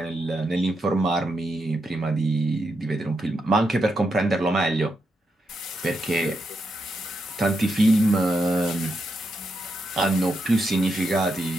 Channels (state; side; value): normal; both; correlation 0.83